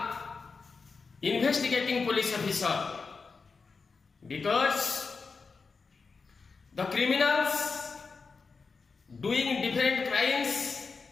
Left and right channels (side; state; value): right; quieter; 4.7 dB